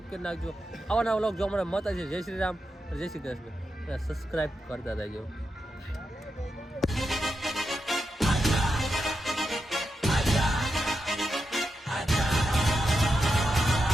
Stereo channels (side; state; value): both; normal; correlation 0.87